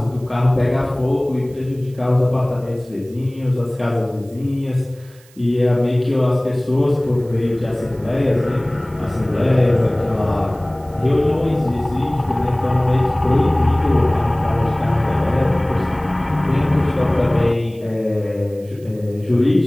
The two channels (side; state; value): right; noise; hiss, 28 dB below the sound